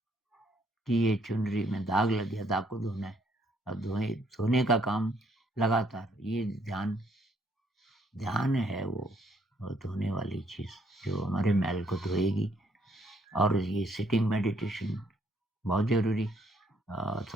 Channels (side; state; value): both; normal; correlation 0.68